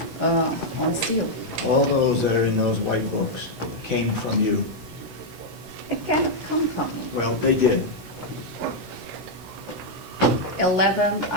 unseal. All those that are in those white books came from you. It cannot come from me. Well, they did. 11,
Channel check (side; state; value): left; late; 16 ms